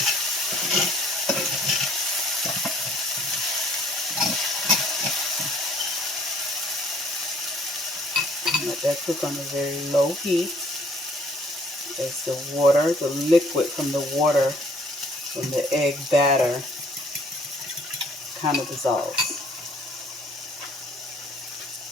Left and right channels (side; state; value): both; normal; correlation 0.59